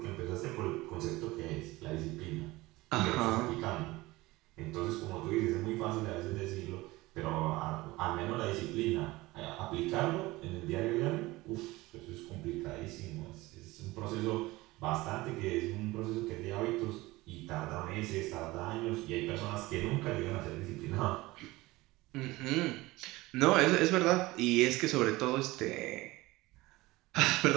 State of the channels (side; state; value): left; quieter; 20.1 dB